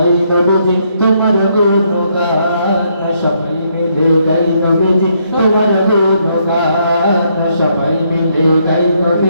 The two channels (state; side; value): inverted; both; correlation -0.73